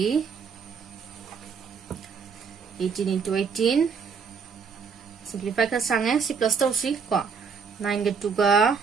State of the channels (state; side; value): quieter; left; 5.9 dB